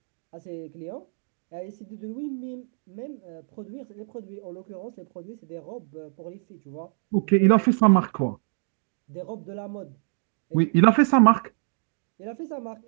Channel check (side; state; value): left; silent; digital silence